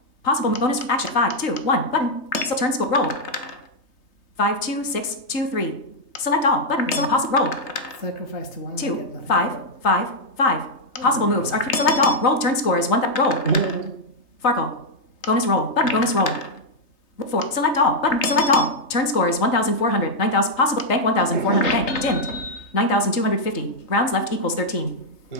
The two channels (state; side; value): late; right; 3.3 ms